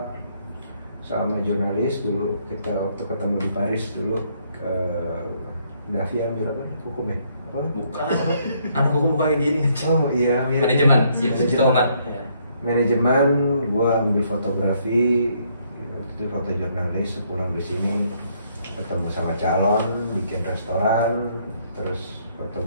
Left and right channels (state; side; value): inverted; both; correlation -0.70